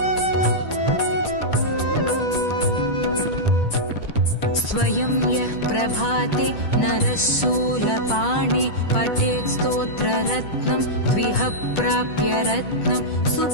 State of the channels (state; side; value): late; right; 10 ms